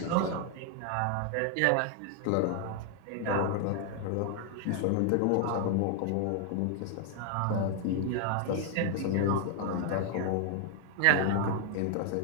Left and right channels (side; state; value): both; different; correlation 0.00